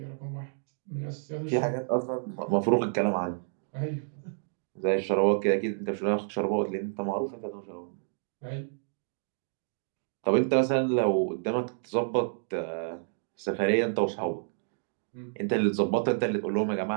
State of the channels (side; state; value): left; silent; digital silence